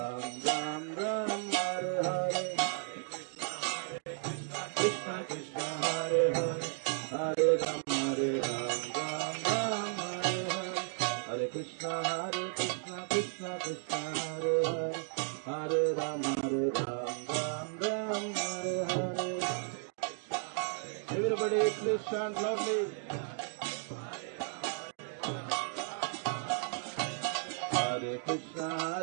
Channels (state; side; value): silent; left; 55 dB below the other